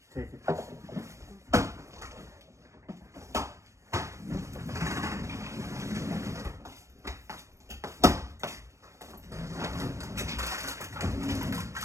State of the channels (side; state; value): left; late; 0.15 ms